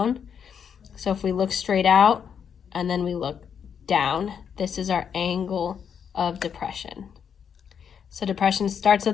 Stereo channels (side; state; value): right; quieter; 7.5 dB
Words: So if we look straight out and then we look down, this is our angle of depression. So depression starts